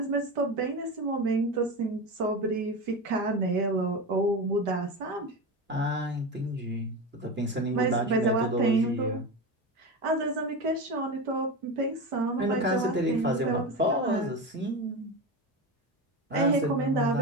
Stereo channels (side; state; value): both; normal; correlation 0.22